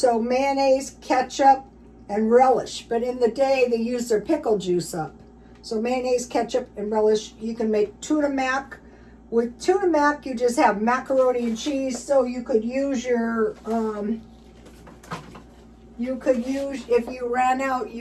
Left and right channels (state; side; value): identical; both; correlation 1.00